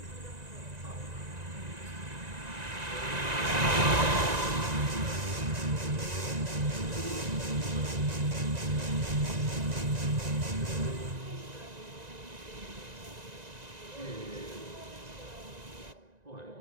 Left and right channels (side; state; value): left; late; 1.9 ms